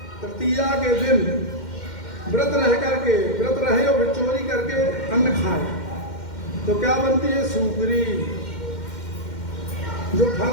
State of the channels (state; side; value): late; right; 2.1 ms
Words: तृतीया के दिन व्रत रहे और चोरी करके अन्न खाए तो क्या बनती है? सूकरी। जो फल